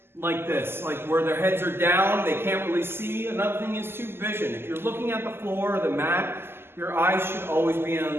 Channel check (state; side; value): late; left; 0.12 ms